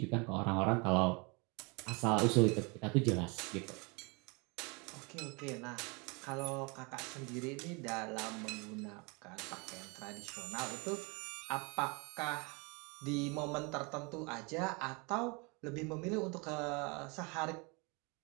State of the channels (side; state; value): left; quieter; 30.0 dB